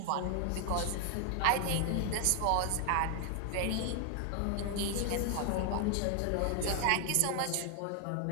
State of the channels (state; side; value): different; both; correlation 0.00